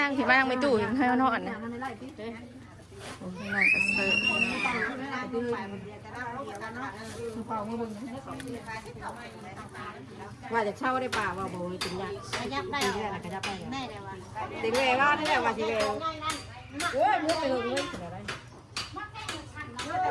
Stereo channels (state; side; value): identical; both; correlation 1.00